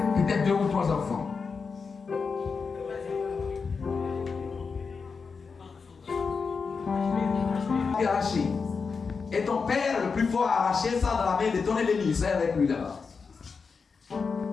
peut-être 2 ou 3 enfants. Arraché. Et ton père le plus fort a arraché ça dans la main de ton ennemi. C'est avec lui là-bas.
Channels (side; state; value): right; quieter; 5.2 dB